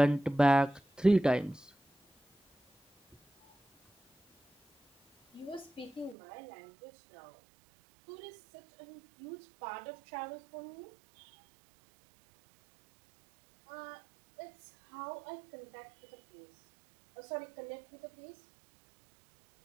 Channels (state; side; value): drops out; left; at 6.2 s